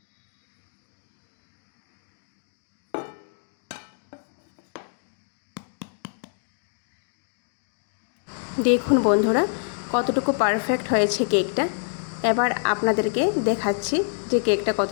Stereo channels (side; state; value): right; silent; 61 dB below the other